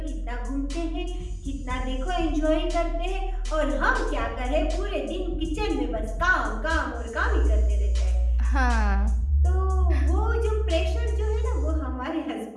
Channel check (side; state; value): both; identical; correlation 1.00